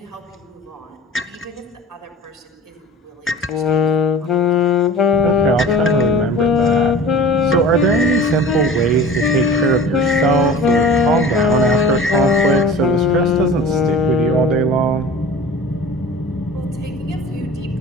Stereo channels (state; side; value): normal; both; correlation 0.39